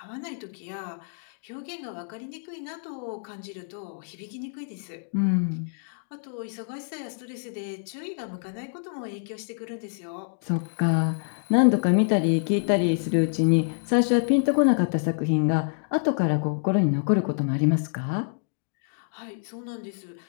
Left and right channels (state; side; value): silent; right; digital silence